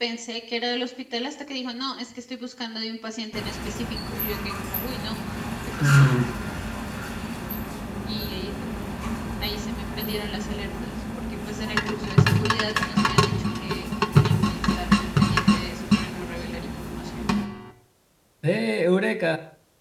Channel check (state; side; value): identical; both; correlation 1.00